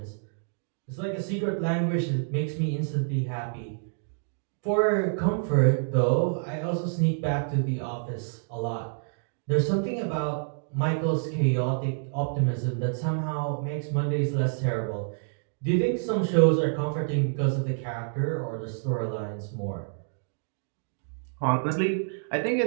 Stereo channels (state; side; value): silent; left; digital silence